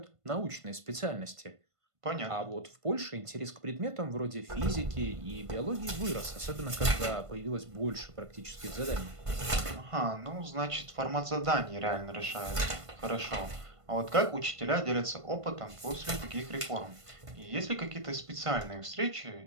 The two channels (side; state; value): left; late; 1.5 ms